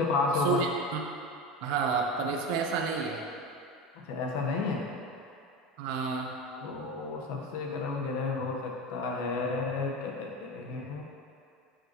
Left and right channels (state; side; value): normal; both; correlation 0.24